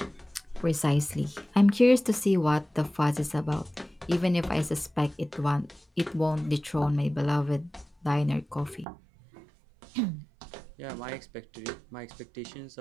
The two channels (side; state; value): left; drops out; at 8.8 s